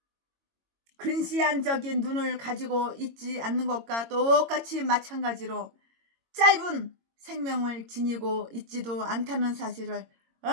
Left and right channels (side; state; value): left; late; 22 ms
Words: 근시안적인 눈을 가지고 있지 않는 것과 똑같이 마찬가지로 짧은 생명을 지니고 있지도 않다는 사실을